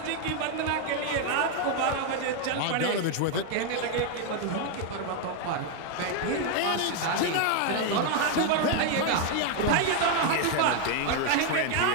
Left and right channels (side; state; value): both; different; correlation 0.01